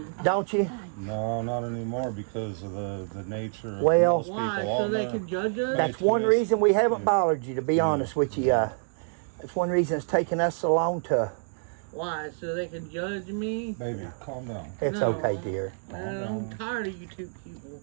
don't you? No, not anymore because of the nature of Well- most people Why? So on they there. can judge us? That's one reason we haven't bothered you, to be honest with you. That's one reason it's taken us so long to. Why? So they can judge me? Baby, calm down. It's No. okay, dear. Man, I'm tired of you two people.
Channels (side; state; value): left; silent; 60 dB below the other